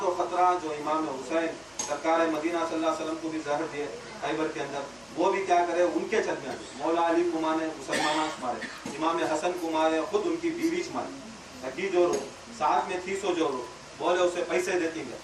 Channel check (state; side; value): noise; left; hum, 29 dB below the sound